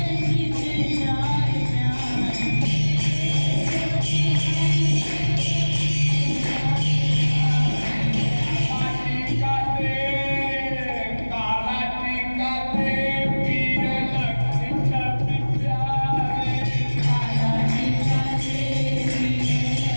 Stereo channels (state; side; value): inverted; both; correlation -1.00